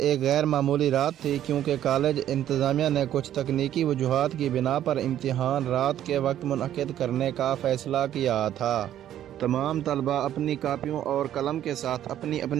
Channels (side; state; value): left; quieter; 11.5 dB